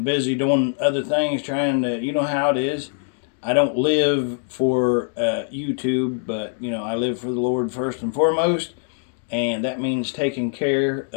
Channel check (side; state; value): right; silent; digital silence